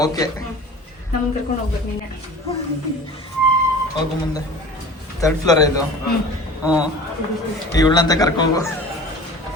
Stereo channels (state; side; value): normal; both; correlation 0.40